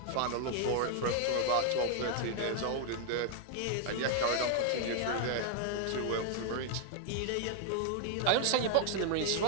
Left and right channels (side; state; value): both; different; correlation 0.00